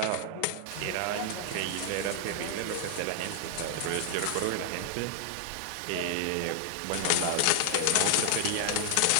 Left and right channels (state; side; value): different; both; correlation 0.00